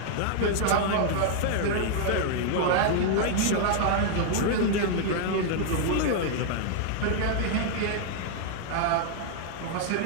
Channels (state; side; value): different; both; correlation -0.01